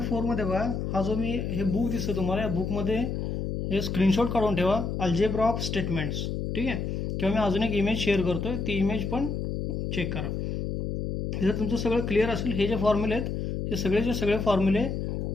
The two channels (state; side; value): noise; left; hum, 3 dB below the sound